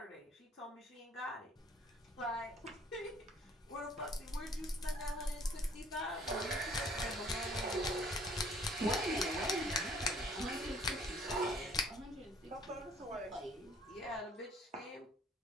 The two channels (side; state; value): both; normal; correlation 0.58